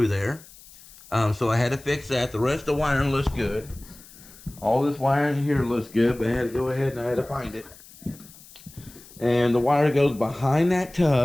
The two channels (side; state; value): left; noise; hiss, 22 dB below the sound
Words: there. So I had to fix that. The rest of the wiring looks good. All this wiring here looks good, but I had to go ahead and I had to find it. And the wire goes behind that